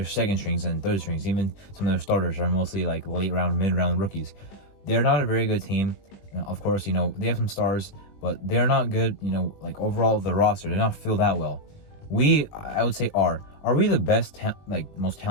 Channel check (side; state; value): right; late; 20 ms